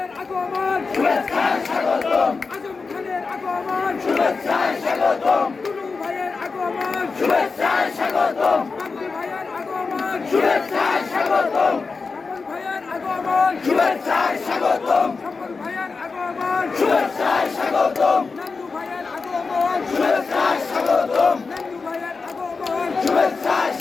আগমন শুভেচ্ছা স্বাগতম আজম খানের আগমন শুভেচ্ছা স্বাগতম টুনু ভাইয়ের আগমন শুভেচ্ছা স্বাগতম বাবলি ভাইয়ের আগমন শুভেচ্ছা স্বাগতম সকল ভাইয়ের আগমন শুভেচ্ছা স্বাগতম সকল ভাইয়ের আগমন শুভেচ্ছা স্বাগতম নান্নু ভাইয়ের আগমন শুভেচ্ছা স্বাগতম নান্নু ভাইয়ের আগমন শুভেচ্ছা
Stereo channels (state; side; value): quieter; right; 4.5 dB